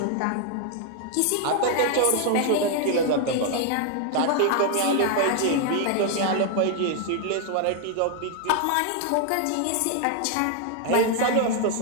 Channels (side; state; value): both; different; correlation 0.00